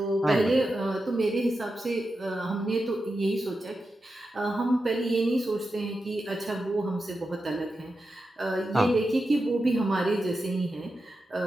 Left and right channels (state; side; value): normal; both; correlation 0.90